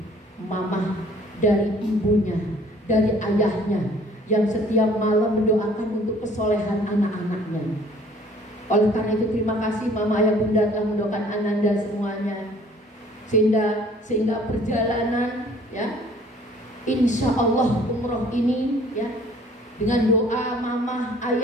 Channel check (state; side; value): normal; both; correlation 0.55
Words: mama, dari ibunya, dari ayahnya, yang setiap malam mendoakan untuk kesolehan anak-anaknya. Oleh karena itu terima kasih mama, ayah, bunda telah mendoakan Ananda semuanya, sehingga perjalanan ya insya Allah umroh ini ya dengan doa mama,